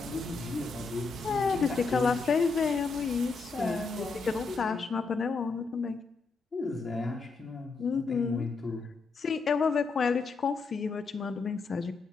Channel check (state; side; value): quieter; right; 4.3 dB